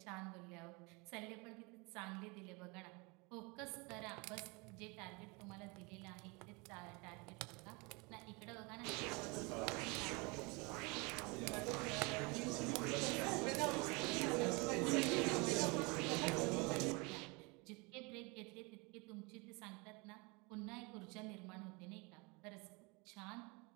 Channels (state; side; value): quieter; left; 28.2 dB